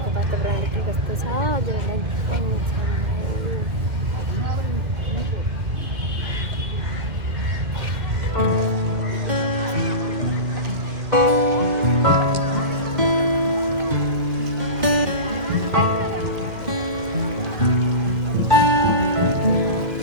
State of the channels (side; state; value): left; late; 2.1 ms